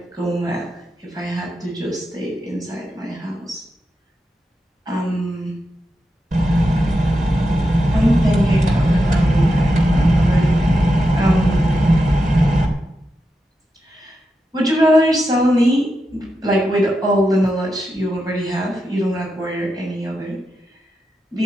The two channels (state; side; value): normal; both; correlation 0.88